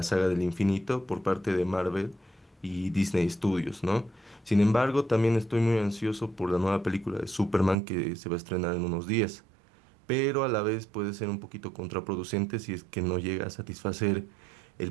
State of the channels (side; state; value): left; drops out; at 7.8 s